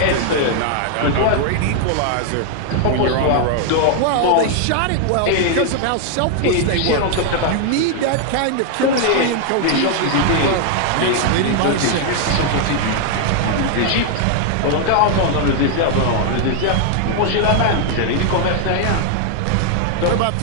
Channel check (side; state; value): both; different; correlation 0.00